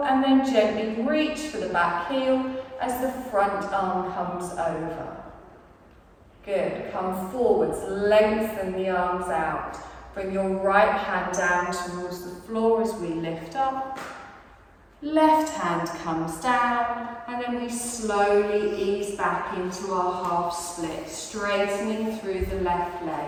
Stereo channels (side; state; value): both; identical; correlation 1.00